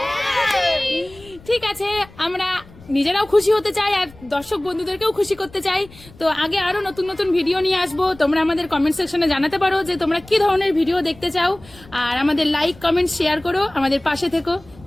ঠিক আছে, আমরা নিজেরাও খুশি হতে চাই আর দর্শক বন্ধুদেরকেও খুশি করতে চাই। তো আগে আরো নতুন নতুন ভিডিও নিয়ে আসবো। তোমরা আমাদের কমেন্ট সেকশনে জানাতে পারো যে তোমরা কি ধরনের ভিডিও দেখতে চাও, আর আমাদের লাইক কমেন্ট শেয়ার করো, আমাদের পাশে থেকো।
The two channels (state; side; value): noise; left; rumble, 22 dB below the sound